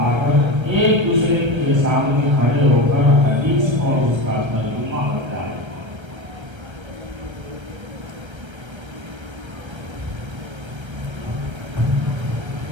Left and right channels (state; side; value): late; left; 1.3 ms